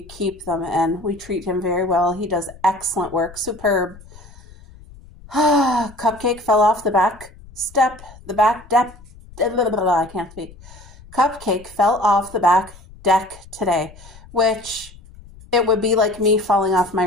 keep them, and we treat him very well. He does excellent work. Superb. Cupcake fell off the back step. I can't speak. Cupcake fell off the back deck today, which it would be like me falling off my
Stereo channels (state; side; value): noise; left; rumble, 21 dB below the sound